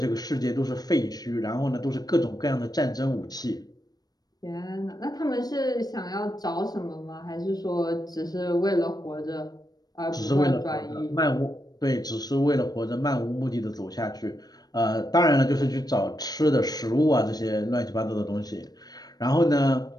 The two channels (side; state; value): right; late; 0.19 ms